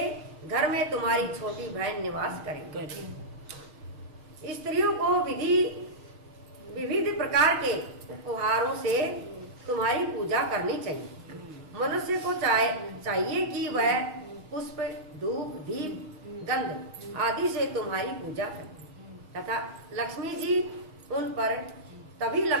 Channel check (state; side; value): late; left; 6.4 ms